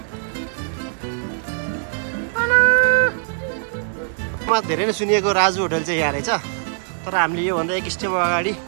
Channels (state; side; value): silent; left; 62 dB below the other